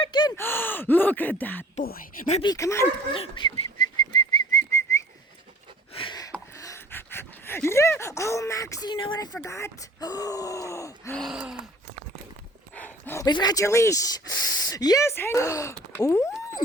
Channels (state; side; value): normal; both; correlation 0.48